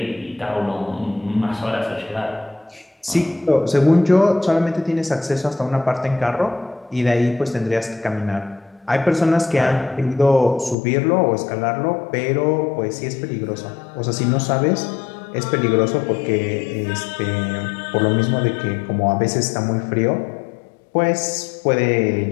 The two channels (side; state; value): right; drops out; at 10.8 s